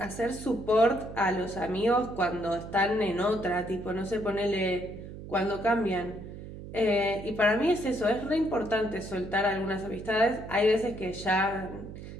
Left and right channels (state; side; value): noise; right; hum, 12 dB below the sound